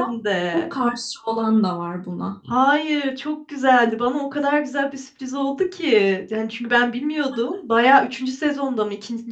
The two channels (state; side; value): identical; both; correlation 1.00